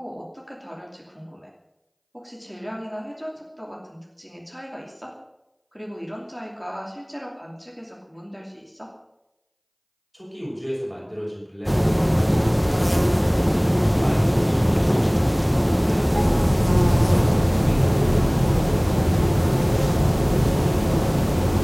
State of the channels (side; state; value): both; identical; correlation 1.00